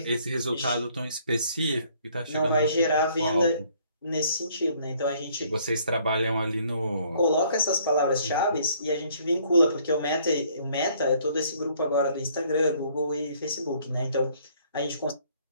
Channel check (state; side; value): inverted; both; correlation -0.62